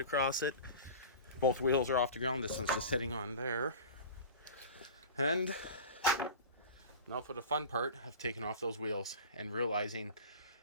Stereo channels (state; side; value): inverted; both; correlation -0.35